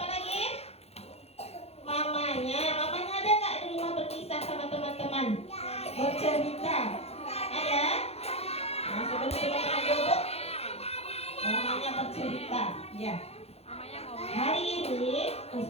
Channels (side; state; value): right; late; 0.30 ms